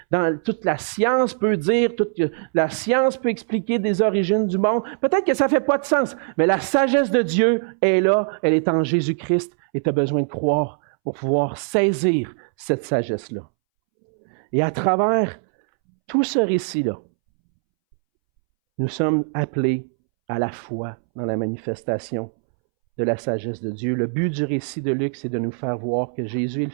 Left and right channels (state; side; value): silent; left; 64 dB below the other